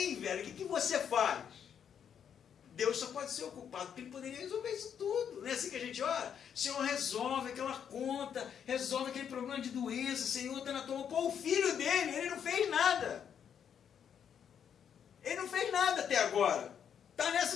velho, o que você faz? Deus só pode ser ocupado, porque Ele poderia resolver isso tudo. Não é assim que a gente ora? Senhor, resolve aquela conta, resolve aquele problema de doença, Senhor, está na tua mão. Pô, o filho dele, ele não fez nada. Ele não fez nada até agora. Está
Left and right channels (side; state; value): right; quieter; 8.2 dB